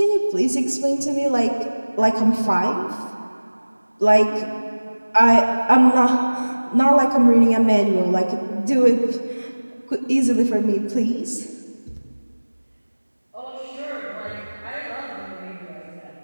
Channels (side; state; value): both; inverted; correlation -1.00